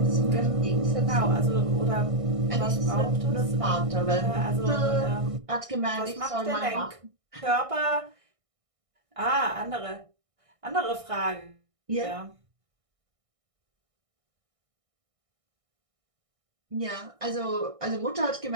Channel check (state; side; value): late; left; 1.6 ms